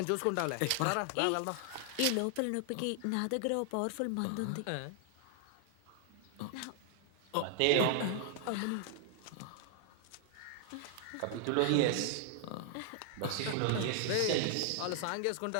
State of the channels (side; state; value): both; different; correlation 0.00